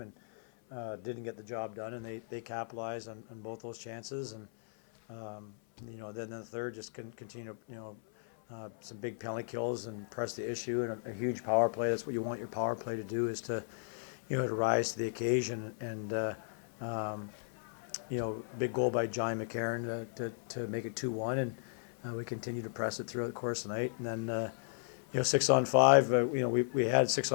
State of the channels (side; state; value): right; silent; 54 dB below the other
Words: and didn't get the job done, and they capitalized on both those chances, and then the third just continue some big penalty kills and press the issue and a huge power play. That's what you want your power play to do, is to to rise to the occasion, and big goal by John McCarron to make it 2-1, and we continue to press it throughout the course of the night. And then 6-on-5, we had